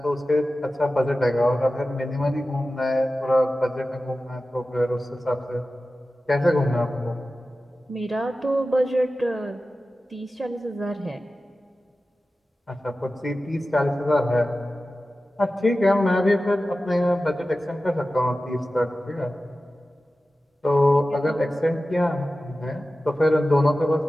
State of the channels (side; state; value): both; normal; correlation 0.94